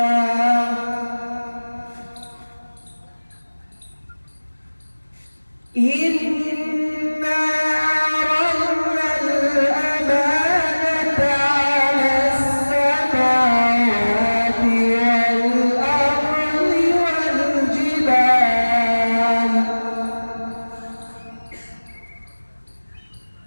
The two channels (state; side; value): inverted; both; correlation -1.00